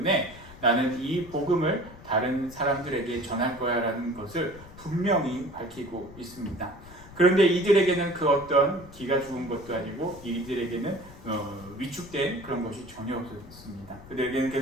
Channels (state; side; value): noise; left; rumble, 18 dB below the sound